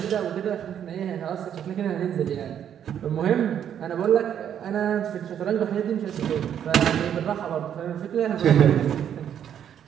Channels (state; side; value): quieter; left; 9.3 dB